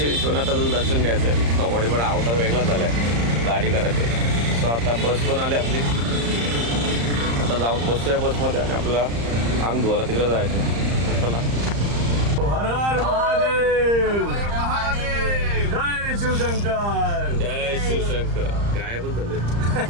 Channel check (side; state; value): left; late; 35 ms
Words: विश्वनाथाचं दर्शन घ्यायचं आहे. कबड्डी पण अवतार वेगळा झाला आहे, गाडी करायचं. सो आता बस पण आली आपली. आता जाऊन बसतोय बसमध्ये आणि आपला अंग धुवायला तिकडे जायचं. चला. हर हर महादेव, जय शिवशंकर, जय शिवशंकर. गायबच झाले.